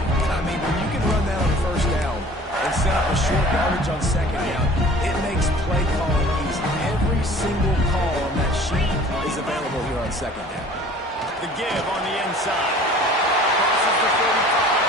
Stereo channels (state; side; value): normal; both; correlation 0.48